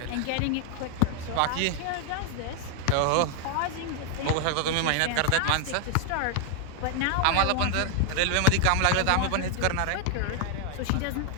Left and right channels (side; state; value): both; different; correlation 0.00